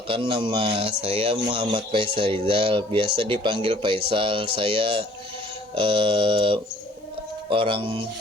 nama saya Muhammad Faisal Rizal. Biasa dipanggil Faisal. Saya orang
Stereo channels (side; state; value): both; normal; correlation 0.56